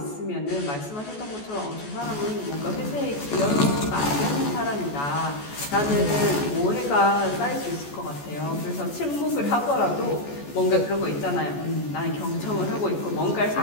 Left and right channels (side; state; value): right; late; 14 ms